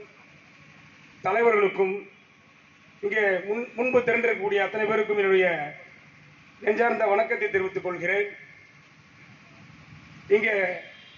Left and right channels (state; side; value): identical; both; correlation 1.00